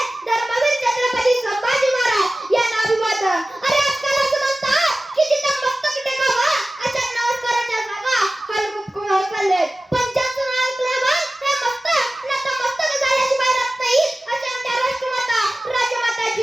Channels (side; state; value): both; normal; correlation 0.96